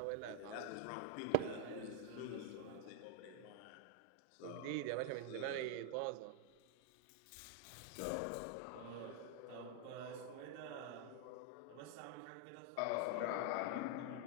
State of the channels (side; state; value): both; different; correlation 0.00